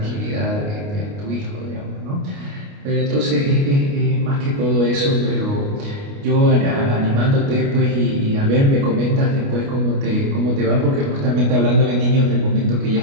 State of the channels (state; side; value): late; left; 29 ms